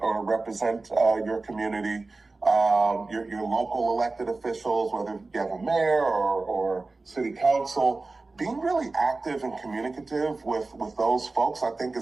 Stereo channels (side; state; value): left; quieter; 3.5 dB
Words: or represent your community. Your local elected officials, whether you have a mayor or city council, being really active and communicative with those folks, I think,